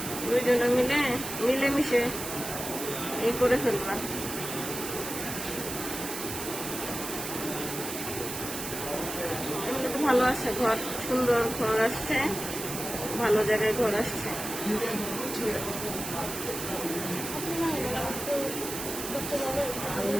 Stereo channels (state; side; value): noise; right; hiss, 6 dB below the sound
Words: দুইজনে মিলেমিশে এই করে ফেলবা। এমনি তো ভালো আছে ঘর, সুন্দর ঘর আসছে, ভালো জায়গায় ঘর আসছে।